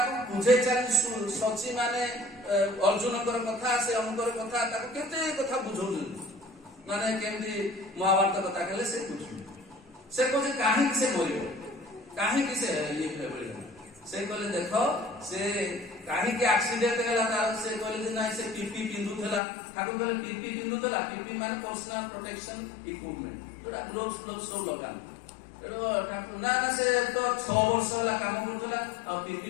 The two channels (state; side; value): drops out; right; at 19.4 s